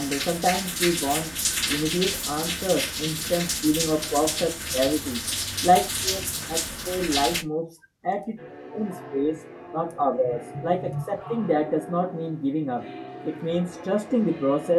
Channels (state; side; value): identical; both; correlation 1.00